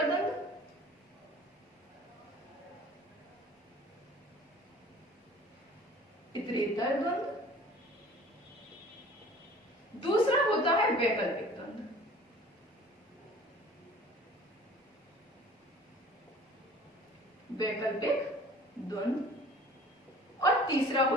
द्वंद्व, इतरेतर द्वंद्व। दूसरा होता है वैकल्पिक द्वंद्व, वैकल्पिक द्वंद्व। और तीसरा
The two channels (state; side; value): normal; both; correlation 0.47